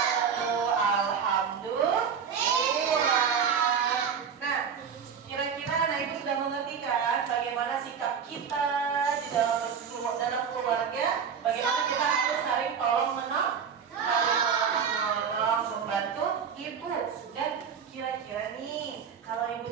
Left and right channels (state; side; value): quieter; left; 7.0 dB